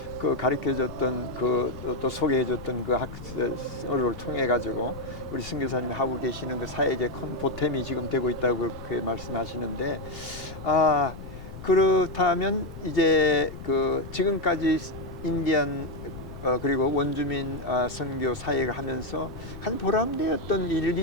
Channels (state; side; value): noise; left; rumble, 13 dB below the sound